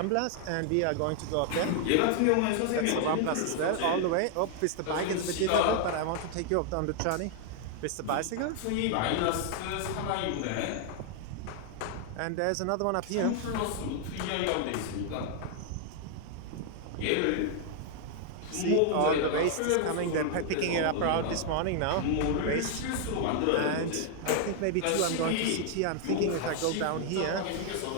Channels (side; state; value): both; different; correlation 0.00